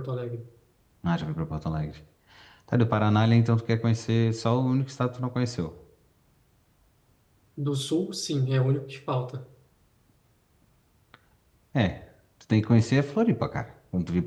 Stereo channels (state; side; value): identical; both; correlation 1.00